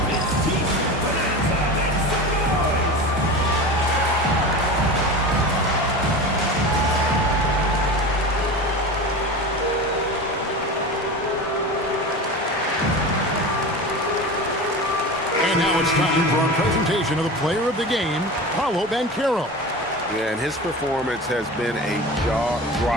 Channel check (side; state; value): both; normal; correlation 0.30